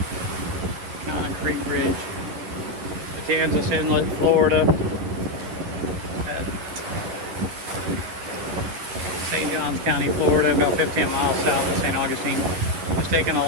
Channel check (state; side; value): late; left; 11 ms